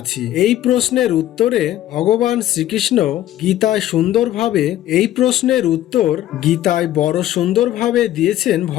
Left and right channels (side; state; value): right; quieter; 13.2 dB